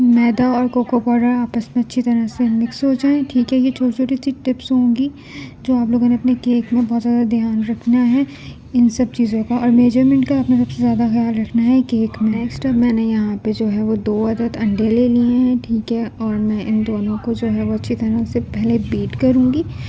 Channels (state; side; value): identical; both; correlation 1.00